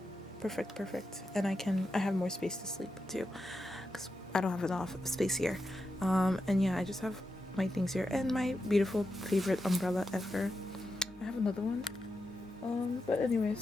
And I have more space to sleep too, because I don't have enough space here. And yeah, I just have my things here and my beautiful favorite umbrella ever. I have another one, but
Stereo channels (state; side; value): normal; both; correlation 0.87